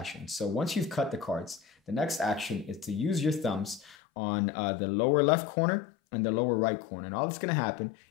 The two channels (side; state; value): right; drops out; at 4.0 s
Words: So once you've cut the cards, the next action is to use your thumbs on the lower left corner and the lower right corner. And all that's going to happen